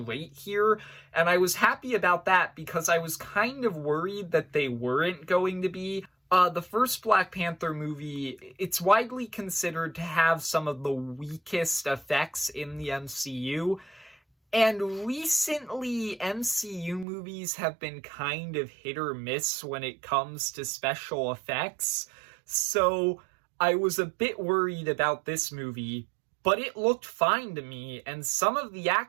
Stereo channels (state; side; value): drops out; left; at 17.1 s